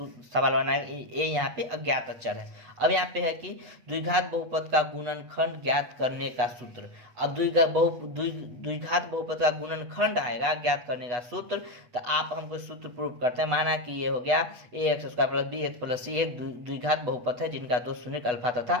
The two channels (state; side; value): late; left; 8.3 ms